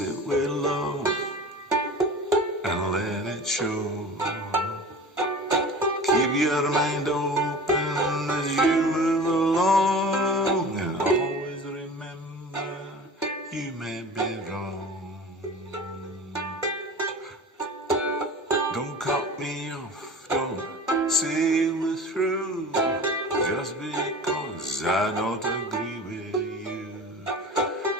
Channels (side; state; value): both; normal; correlation 0.37